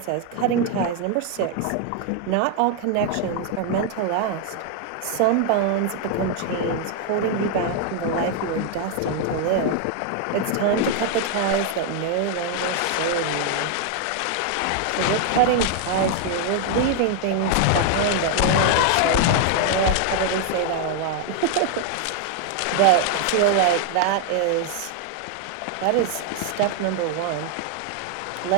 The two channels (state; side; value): different; both; correlation 0.00